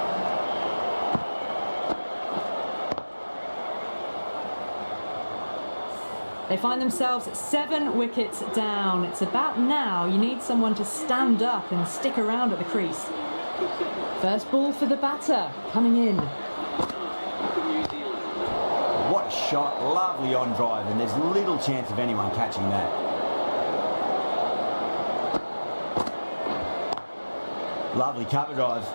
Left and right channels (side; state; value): both; inverted; correlation -1.00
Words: They find themselves 7 wickets down. It's about now you need someone to stand up and stick around at the crease. First ball for the batter, coming in. What a shot, lovely on drive, and there's little chance of anyone catching that. Lovely cover drive,